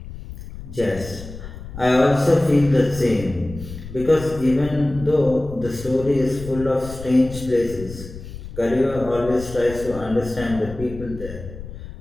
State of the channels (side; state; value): left; noise; rumble, 13 dB below the sound